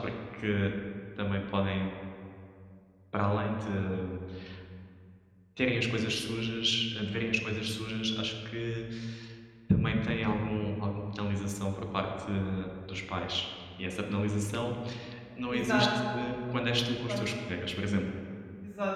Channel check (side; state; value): both; identical; correlation 1.00